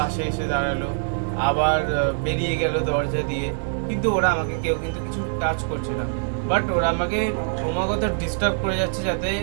এসে দাঁড়ালো, আবার বেরিয়ে গেল দরজা দিয়ে। কিন্তু ওরা আমাকে কেউ কিন্তু কিছু টাচ করছে না, বাট ওরা আমাকে ক্রমাগত ডিস্টার্ব করে যাচ্ছে যাতে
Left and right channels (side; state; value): left; silent; digital silence